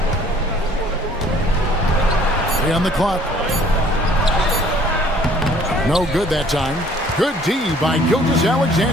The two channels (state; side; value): normal; both; correlation 0.57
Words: Three on the clock. No good that time. Good D by